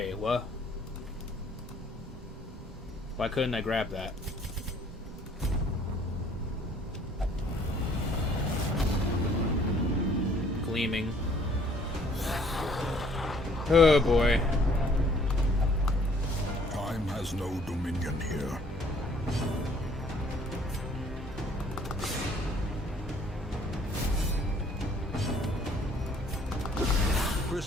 what? Why couldn't I grab that? Gleaming. Oh boy. Time has no dominion here.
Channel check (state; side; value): normal; both; correlation 0.59